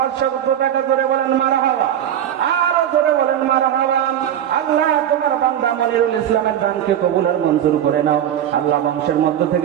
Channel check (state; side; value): quieter; left; 10.4 dB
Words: টাকা, জোরে বলেন মারহাবা। আরো জোরে বলেন মারহাবা। আল্লাহ তোমার বান্দা মনিরুল ইসলামের দানকে কবুল আর মঞ্জুর করে নাও। আল্লাহ বংশের মধ্য